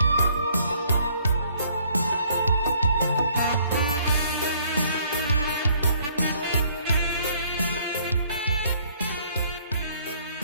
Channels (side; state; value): both; inverted; correlation -0.63